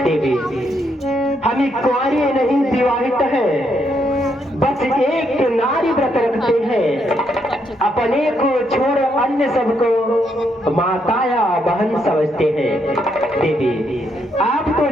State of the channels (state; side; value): normal; both; correlation 0.76